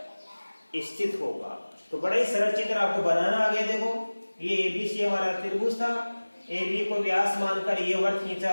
स्थित होगा। तो बड़ा ही सरल चित्र आपको बनाना आ गया। देखो, ये एबीसी हमारा त्रिभुज था, AB को व्यास मानकर ये वृत्त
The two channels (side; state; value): both; inverted; correlation -1.00